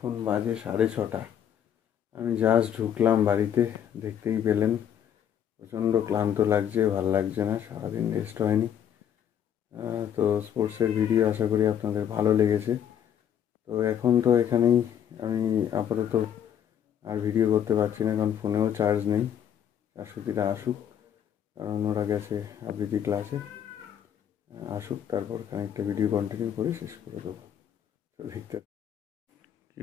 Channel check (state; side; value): quieter; right; 9.3 dB